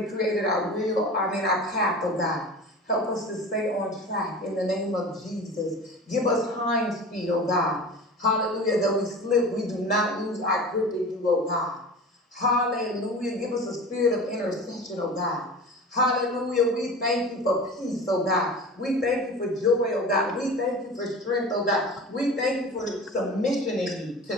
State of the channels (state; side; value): normal; both; correlation 0.35